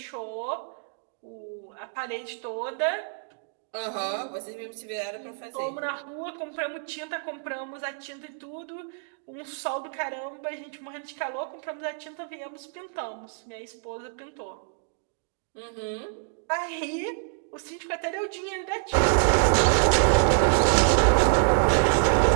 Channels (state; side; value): silent; left; digital silence